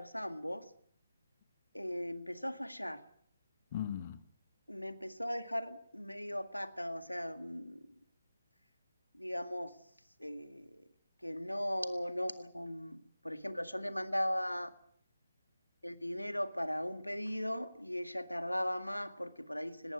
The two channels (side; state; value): both; inverted; correlation -0.97